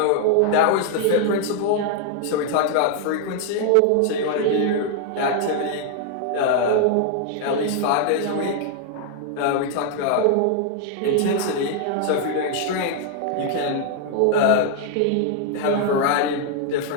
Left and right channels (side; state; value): both; different; correlation 0.00